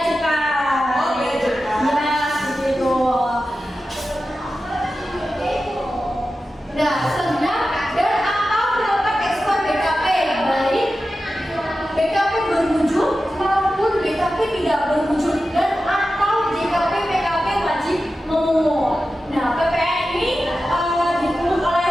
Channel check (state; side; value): normal; both; correlation 0.93